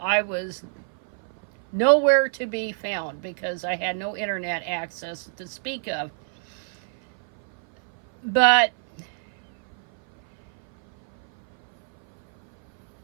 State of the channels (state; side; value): silent; left; 57 dB below the other